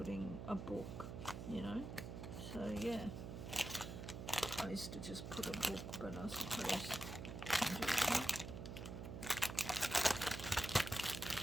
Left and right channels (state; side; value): noise; right; hum, 7 dB below the sound